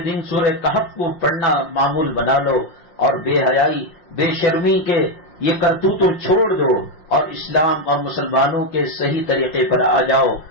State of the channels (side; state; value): right; late; 5.7 ms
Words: دن سورہ کہف کو پڑھنا معمول بنا لو، اور بے حیائی بے شرمی کے یہ کرتوت چھوڑ دو اور اسلام اور مسلمانوں کے صحیح طریقے پر آ جاؤ۔